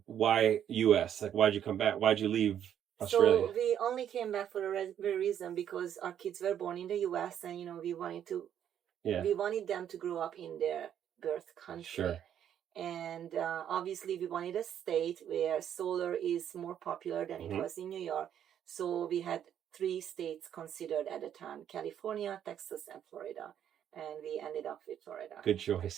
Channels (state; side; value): quieter; left; 9.7 dB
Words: why US. Like, why'd you come back? Why'd you leave Australia? So we only came back for a very reason because our kids were born in the US, and we wanted them to grow up in their birth country. Sure. And obviously we wanted a state where solar is more popular than it was in New York. So we had 3 states considered at the time: California, Texas, and Florida. And we ended up with Florida. Good